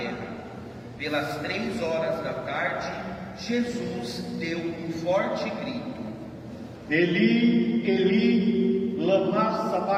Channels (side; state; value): both; identical; correlation 1.00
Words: Pelas 3 horas da tarde, Jesus deu um forte grito: Eli, Eli, lama